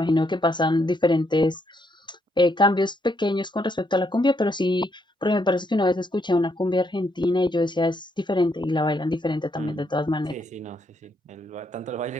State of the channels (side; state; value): both; normal; correlation 0.75